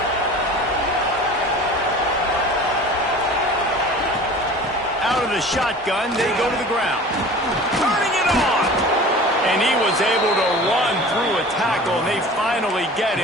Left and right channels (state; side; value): normal; both; correlation 0.40